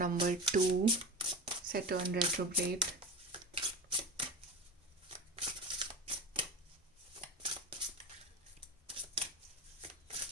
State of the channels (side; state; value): both; normal; correlation 0.27